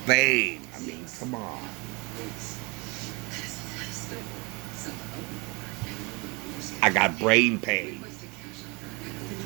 I mean, come on. I got brain pain.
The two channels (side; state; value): left; quieter; 27.5 dB